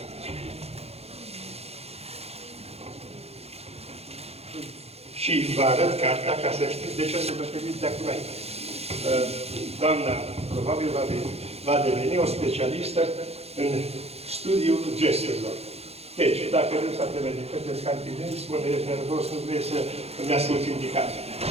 Și vă arăt cartea ca să știți de ce să vă feriți de acum aici. Doamna, probabil, va deveni o specialistă în studiul gesturilor. Deci, dacă nu s-a de către cantinent, spune, ești nervos, nu vrei să îmi asculti indicații.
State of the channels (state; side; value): late; left; 0.30 ms